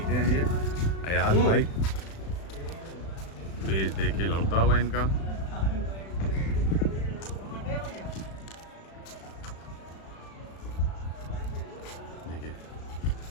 हैं ये अयाज भाई। पेज देखिए लड़ता हुआ इनका। देखिए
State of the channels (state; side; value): late; right; 36 ms